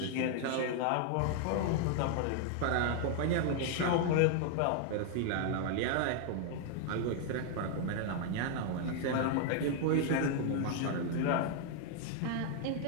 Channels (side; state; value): both; different; correlation 0.00